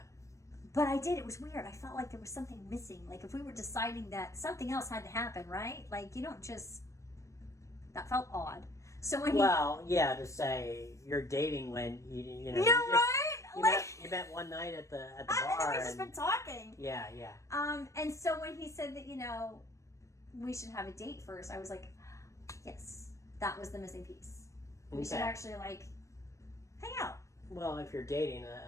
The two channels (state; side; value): late; right; 0.15 ms